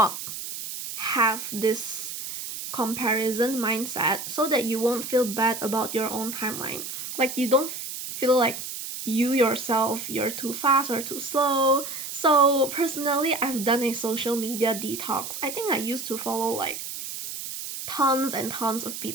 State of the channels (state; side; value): noise; right; hiss, 7 dB below the sound